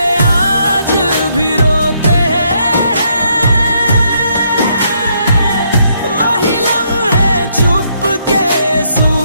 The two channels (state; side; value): inverted; both; correlation -0.73